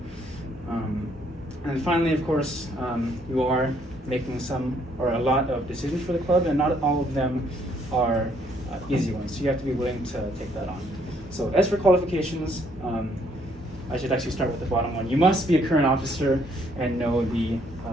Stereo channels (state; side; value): normal; both; correlation 0.67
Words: And finally, of course, you are making some or a lot of decisions for the club, and not all of them are easy ones, so you have to be willing to take that on. So as for qualifications, I should actually start with the bottom one. You must be a current officer and know the